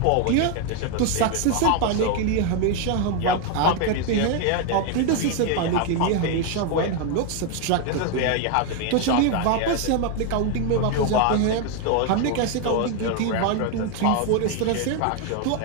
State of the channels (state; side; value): different; both; correlation 0.01